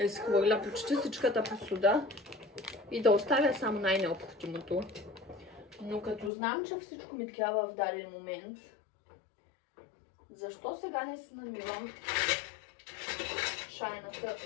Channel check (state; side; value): drops out; right; at 6.3 s